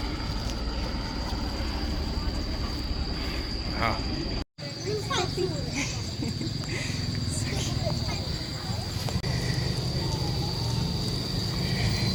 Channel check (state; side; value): identical; both; correlation 1.00